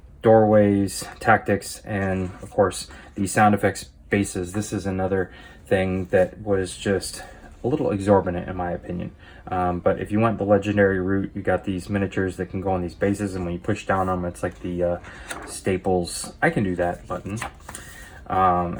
doorways, tactics, and of course the sound effects bases. This is another thing that was just a little exorbitant in my opinion. But if you went the legendary route, you got these miniatures that can go on these bases, and when you push down on them, it's like the Staples "I can do that" button,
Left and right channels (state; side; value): identical; both; correlation 1.00